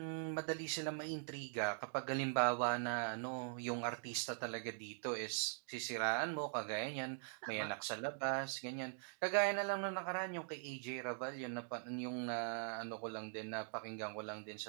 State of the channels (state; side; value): silent; left; digital silence